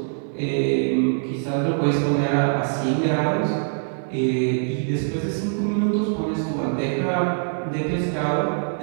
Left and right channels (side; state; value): left; silent; digital silence